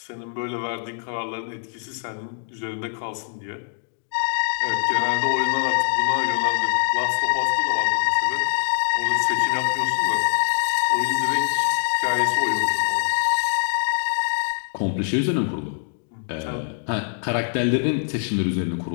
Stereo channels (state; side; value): silent; right; 62 dB below the other